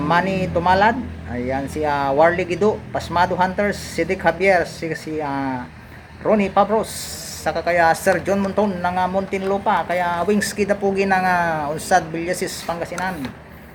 Tumalad, ayan, si Warley Gido, Pasmado Hunters, Sidik Javier, si Ronnie Pabros, saka kaya Sir John Monton ng Muntinlupa, kaya Wings Kidapugi ng Unsad Villasis, Pangasinan.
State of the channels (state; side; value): identical; both; correlation 1.00